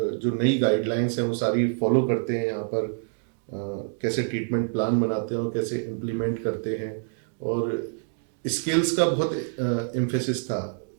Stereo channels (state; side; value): silent; left; digital silence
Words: जो नई गाइडलाइंस हैं वो सारी फॉलो करते हैं यहाँ पर, कैसे ट्रीटमेंट प्लान बनाते हैं और कैसे इम्प्लीमेंट करते हैं। और स्किल्स का बहुत एम्फेसिस था